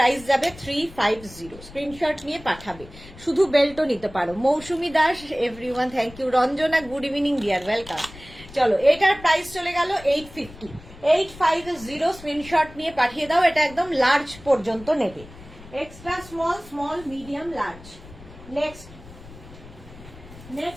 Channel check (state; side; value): noise; left; rumble, 18 dB below the sound